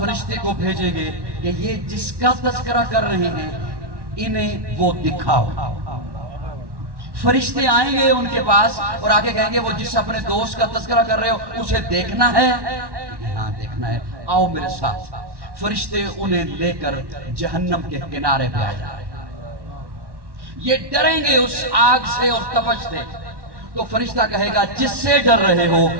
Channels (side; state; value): left; late; 1.1 ms